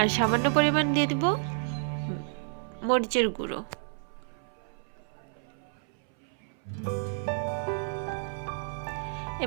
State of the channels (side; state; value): left; silent; 58 dB below the other